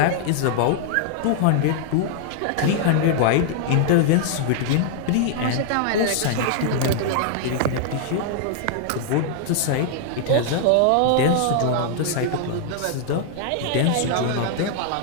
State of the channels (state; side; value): different; both; correlation -0.01